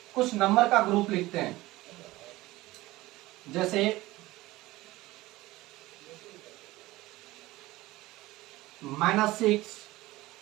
कुछ नंबर का ग्रुप लिखते हैं, जैसे -6,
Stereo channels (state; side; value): quieter; left; 18.5 dB